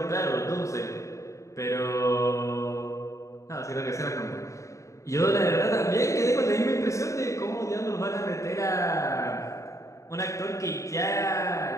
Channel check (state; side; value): late; right; 0.15 ms